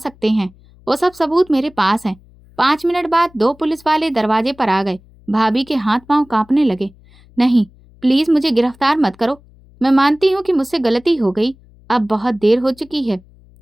हैं, वो सब सबूत मेरे पास हैं। 5 मिनट बाद 2 पुलिस वाले दरवाजे पर आ गए। भाभी के हाथ पांव कांपने लगे। नहीं, प्लीज मुझे गिरफ्तार मत करो। मैं मानती हूँ कि मुझसे गलती हो गई। अब बहुत देर हो चुकी है।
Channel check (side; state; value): left; noise; hum, 27 dB below the sound